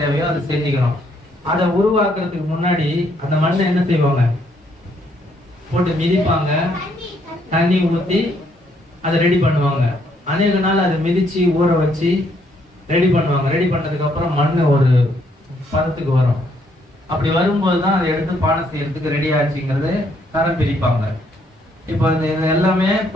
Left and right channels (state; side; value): normal; both; correlation 0.70